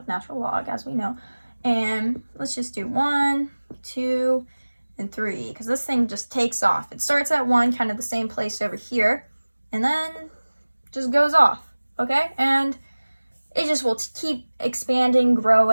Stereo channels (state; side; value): inverted; both; correlation -1.00